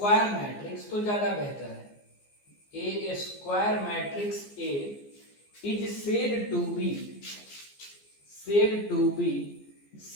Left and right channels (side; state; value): right; late; 14 ms